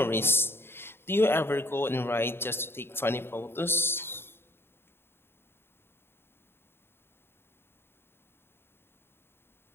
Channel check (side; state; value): right; late; 0.11 ms